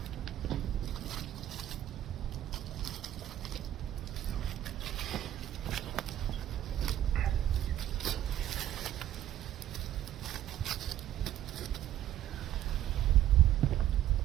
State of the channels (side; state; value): left; quieter; 12.2 dB